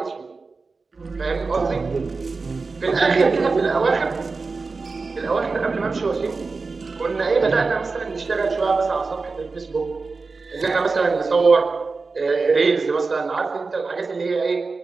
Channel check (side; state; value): left; quieter; 4.2 dB